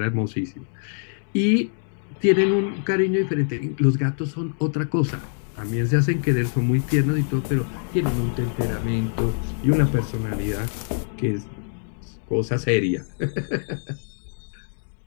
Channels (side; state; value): right; silent; digital silence